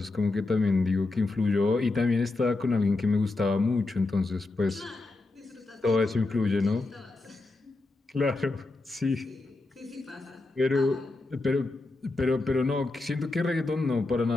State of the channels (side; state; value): right; quieter; 3.2 dB